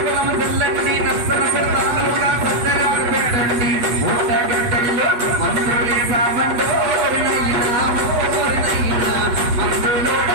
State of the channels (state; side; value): late; left; 8.3 ms